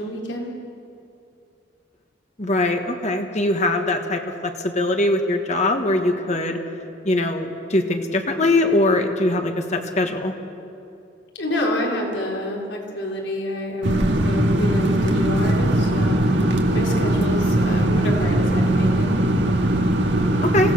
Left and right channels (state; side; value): normal; both; correlation 0.60